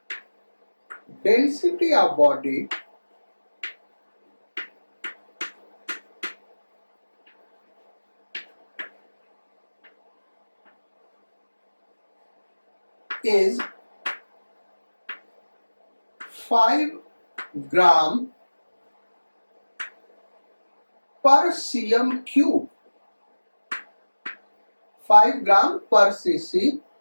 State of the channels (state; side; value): inverted; both; correlation -1.00